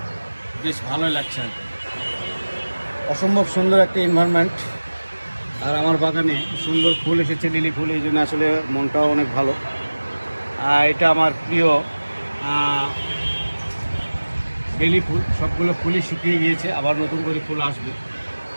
বেশ ভালোই লাগছে আর কি। অসম্ভব সুন্দর একটা এনভায়রনমেন্ট। আর আমার বাগানে সুন্দর ফুল এসেছে, লিলি ফুল, এই জন্য আসলে মনটাও অনেক ভালো। এটা আমার প্রিয় বেলি ফুল। সবগুলো ফুলই শুকিয়ে গিয়েছে, আবার নতুন করে ফুল আসবে।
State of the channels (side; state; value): both; inverted; correlation -1.00